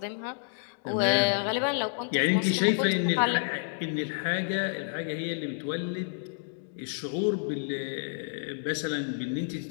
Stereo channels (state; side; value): silent; right; digital silence